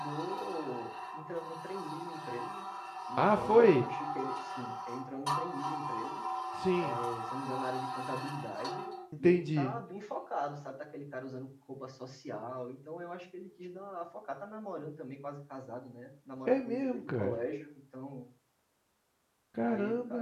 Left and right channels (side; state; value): both; identical; correlation 1.00